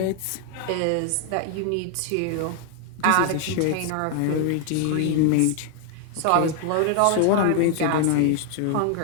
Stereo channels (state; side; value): different; both; correlation 0.00